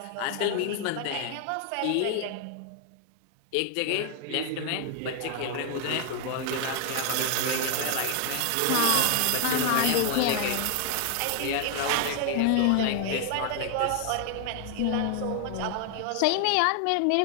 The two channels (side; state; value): both; different; correlation 0.00